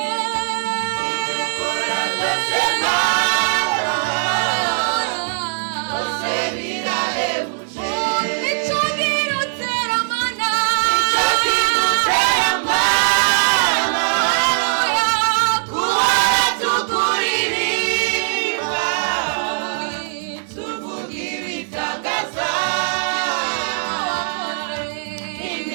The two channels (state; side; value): silent; left; digital silence